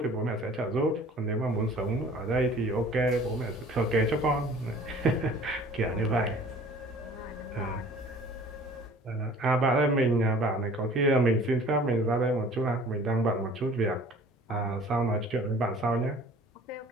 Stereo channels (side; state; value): both; normal; correlation 0.49